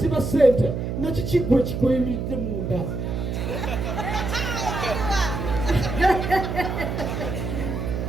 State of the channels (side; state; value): right; noise; hum, 3 dB below the sound